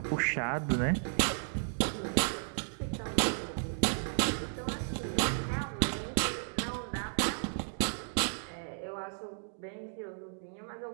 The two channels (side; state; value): left; silent; 55 dB below the other